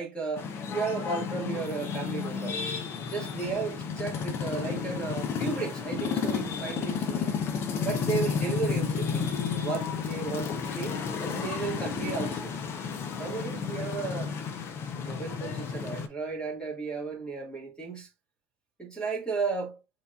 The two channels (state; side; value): normal; both; correlation 0.43